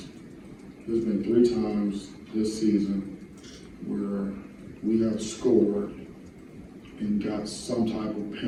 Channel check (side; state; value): both; identical; correlation 1.00